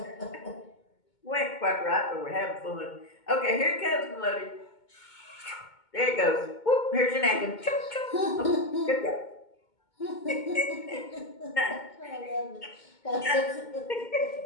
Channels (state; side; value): late; right; 2.2 ms